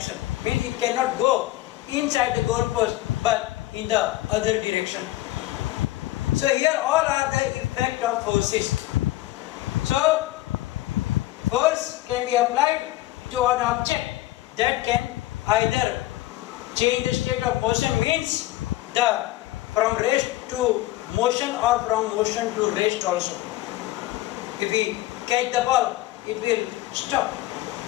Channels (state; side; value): quieter; right; 16.5 dB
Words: Means he cannot go inside the goal post but in the other direction. So here all are the effect of forces. So force can be applied to an object that can either change the state of motion, means the from rest to motion or from motion to rest also. If we catch the ball, it will stop.